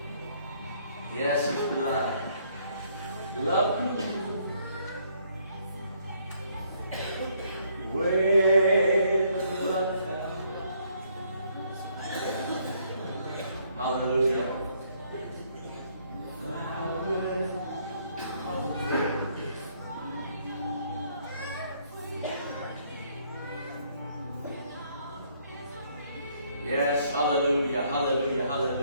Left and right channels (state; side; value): inverted; both; correlation -0.67